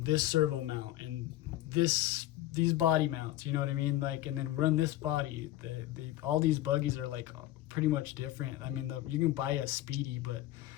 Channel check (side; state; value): right; quieter; 14.9 dB